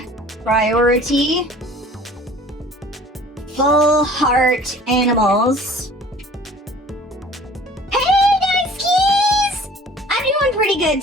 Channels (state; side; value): normal; both; correlation 0.48